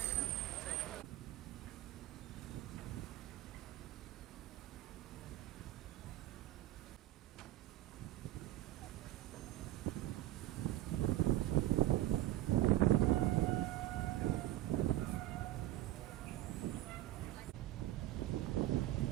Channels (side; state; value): left; quieter; 14.6 dB